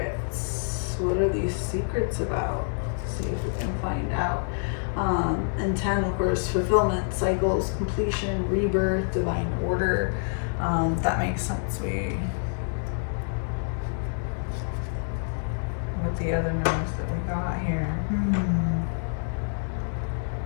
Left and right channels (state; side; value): silent; right; digital silence